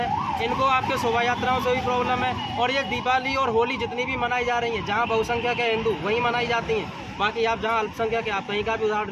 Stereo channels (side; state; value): both; identical; correlation 1.00